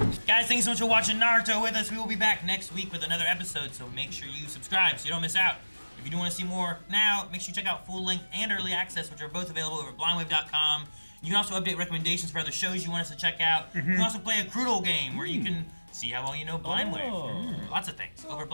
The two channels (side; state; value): both; inverted; correlation -1.00